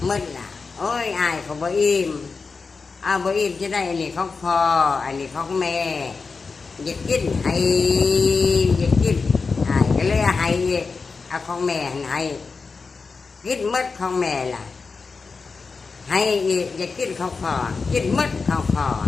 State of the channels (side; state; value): right; quieter; 4.6 dB